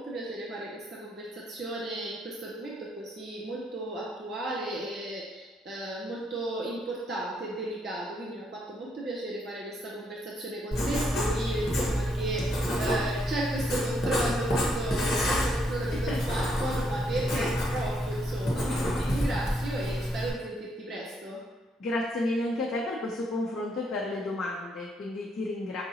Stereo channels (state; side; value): normal; both; correlation 0.74